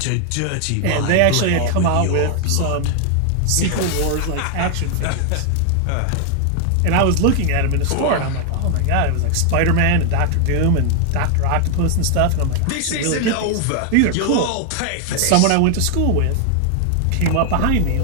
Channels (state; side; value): different; both; correlation 0.00